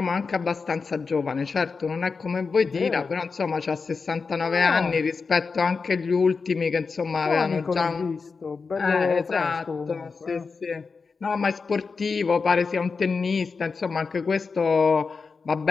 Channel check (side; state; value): right; quieter; 4.8 dB